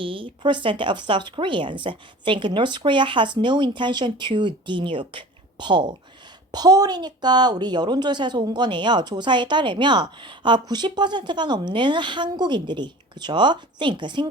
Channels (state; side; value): normal; both; correlation 0.40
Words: of South Koreans think North Korea has no intention to denuke Paul. 펄이니까 우리 여론조사에서 온 거네요. 조사에 따르면 90%가 넘는 한국인들이 그죠? think